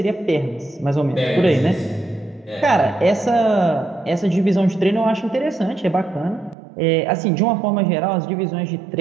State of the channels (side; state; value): left; drops out; at 6.6 s